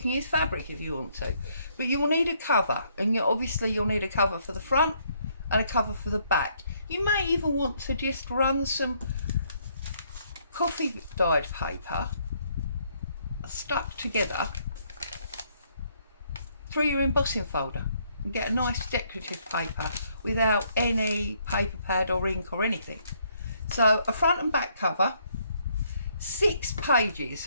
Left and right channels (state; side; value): inverted; both; correlation -0.70